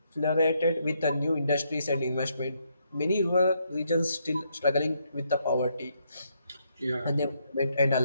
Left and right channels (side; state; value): both; inverted; correlation -0.76